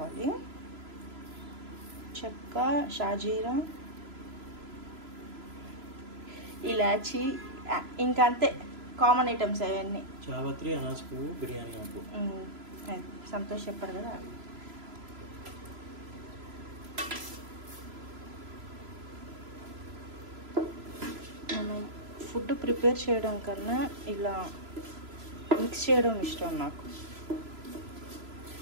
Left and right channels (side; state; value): left; late; 3.0 ms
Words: చెక్క, షాజీరా, ఇలాచి, ఇంకా అంతే కామన్ ఐటమ్స్ అవన్నీ. చావత్రి, అనాస పువ్వు, బిర్యానీ ఆకు. సంతోష్ చెప్పారు కదా. మనం ఫుడ్ ప్రిపేర్ చేయడం కన్నా ఇలా మిక్స్ చేయడం ఇష్టం నాకు.